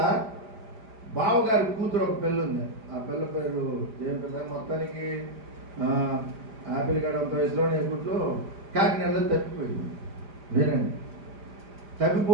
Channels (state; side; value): late; left; 5.0 ms